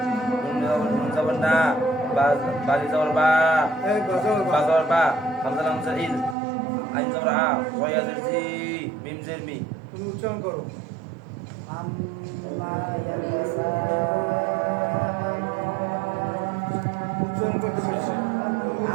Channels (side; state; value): left; drops out; at 6.4 s